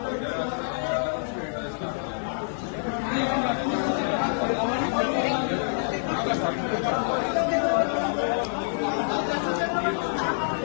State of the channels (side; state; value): right; silent; digital silence